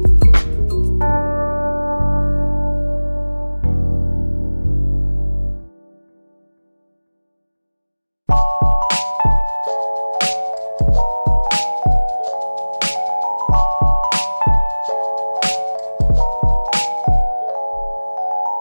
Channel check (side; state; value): both; inverted; correlation -1.00